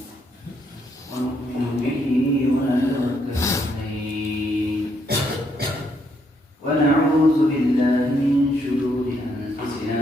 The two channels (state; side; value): normal; both; correlation 0.74